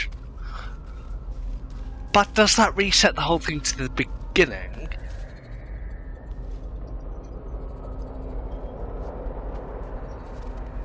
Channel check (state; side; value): identical; both; correlation 1.00